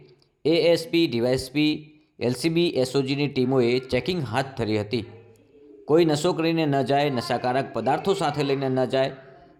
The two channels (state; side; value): identical; both; correlation 1.00